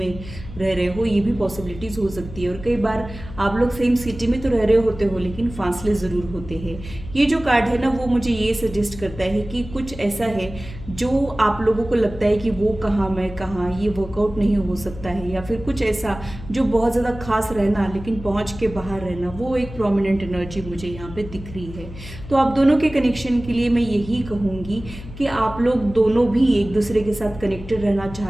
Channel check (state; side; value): noise; left; hum, 13 dB below the sound